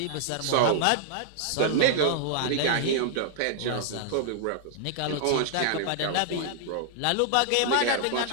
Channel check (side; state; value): both; different; correlation -0.01